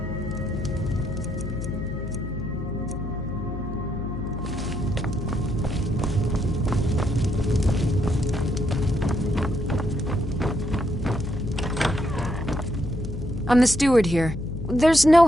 I'm the steward here. There's no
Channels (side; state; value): left; noise; hum, 7 dB below the sound